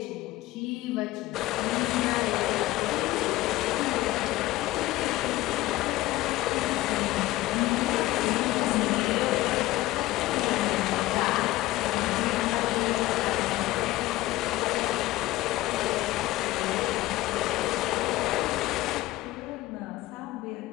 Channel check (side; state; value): right; quieter; 17.3 dB